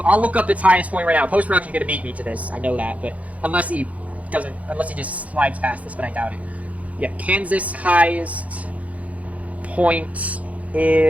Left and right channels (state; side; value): late; left; 0.068 ms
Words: I'll look up its highest point right now. Post-production's gonna beat me to this. I know that, but unless he just slides past this, but I doubt it. Yeah, Kansas' highest point